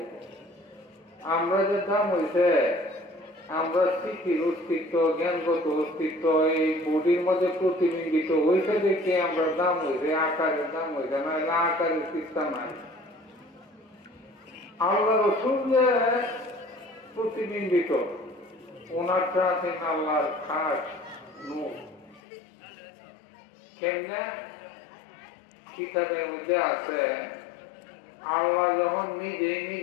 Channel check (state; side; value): drops out; right; at 22.2 s